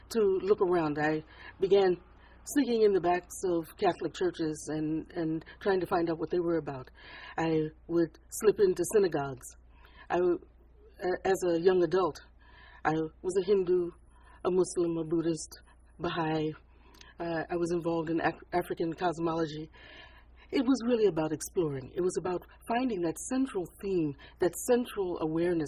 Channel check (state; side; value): identical; both; correlation 1.00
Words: to look around. I began sneaking in the backs of Catholic churches and trying to find out what they were about. I would slip into synagogues. As a young adult, I was a Hindu, a Muslim, a Buddhist, Baha'i. I was involved in African cosmology. It was really about exploring. It was about finding that central theme, that central